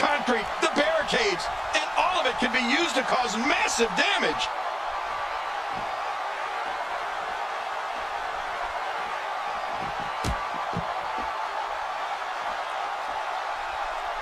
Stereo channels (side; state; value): both; identical; correlation 1.00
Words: the barricades, and all of it can be used to cause massive damage.